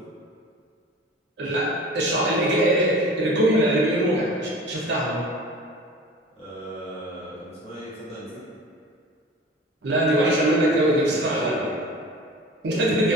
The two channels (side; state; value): both; normal; correlation 0.40